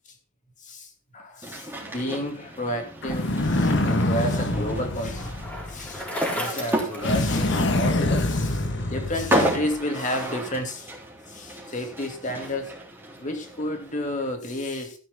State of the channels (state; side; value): normal; both; correlation 0.47